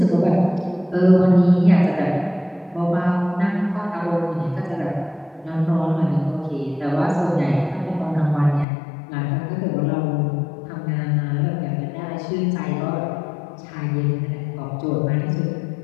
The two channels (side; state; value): right; drops out; at 8.7 s